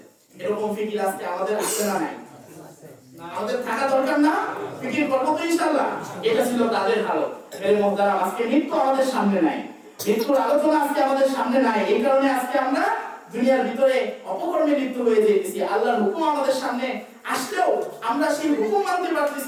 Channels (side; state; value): both; identical; correlation 1.00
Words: এরকম ফিকির আজকে আমাদের আছে না নাই? আমাদের থাকা দরকার না? ফিকির করবো তো ইনশাআল্লাহ। এটা ছিল তাদের হালত। মেরে মুহতারাম, আজকে মৃত্যু আমাদের সামনে নাই, মৃত্যুর আলোচনা আজকে আমাদের সামনে নাই। এই কারণে আজকে আমরা দুনিয়ার ভিতরে অপকর্মে লিপ্ত হয়ে যেতেছি। আল্লাহর হুকুম আমাদের সামনে আসলেও আমরা সেই হুকুম মানতে